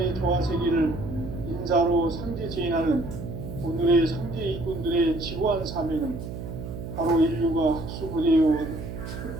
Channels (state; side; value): noise; right; hum, 8 dB below the sound